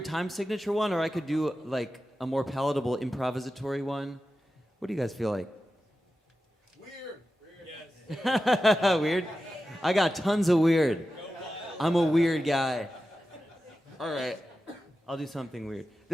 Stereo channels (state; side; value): normal; both; correlation 0.92